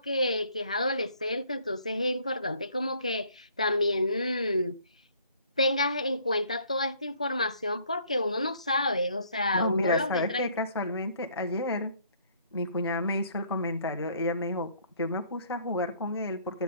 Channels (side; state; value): both; inverted; correlation -0.61